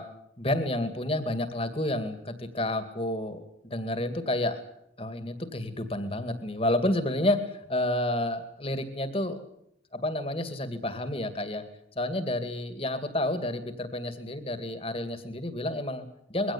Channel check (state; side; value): normal; both; correlation 0.41